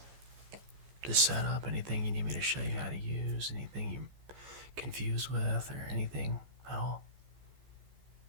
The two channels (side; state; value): left; late; 14 ms